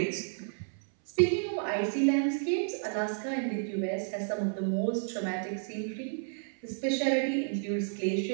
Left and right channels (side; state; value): left; silent; 57 dB below the other